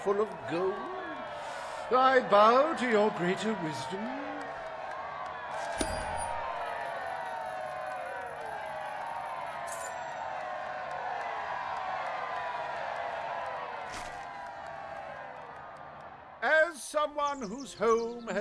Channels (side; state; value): both; identical; correlation 1.00